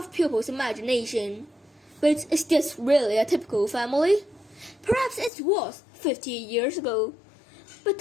people's imagination. But is this really a typical family? Perhaps it was 50 years ago. But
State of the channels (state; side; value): drops out; right; at 5.3 s